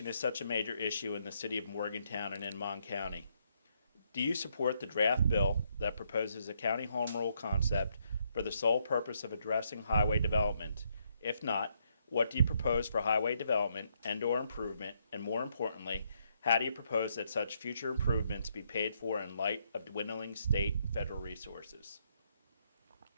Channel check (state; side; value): inverted; both; correlation -0.75